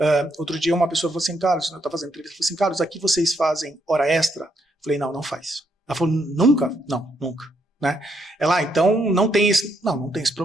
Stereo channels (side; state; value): both; normal; correlation 0.76